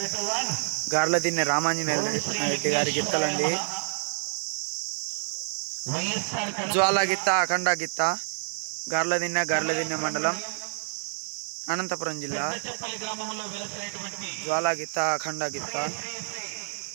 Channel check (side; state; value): left; silent; 59 dB below the other